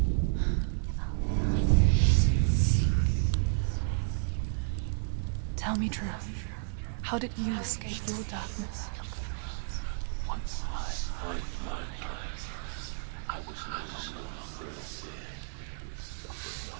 Tell me truth. How did you escape your darkness? Senua, once I found my purpose, I was no longer enslaved to the suffering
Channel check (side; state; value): left; silent; digital silence